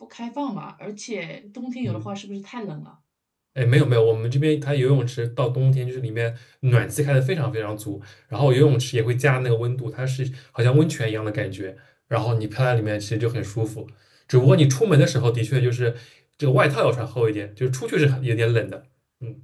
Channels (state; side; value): identical; both; correlation 1.00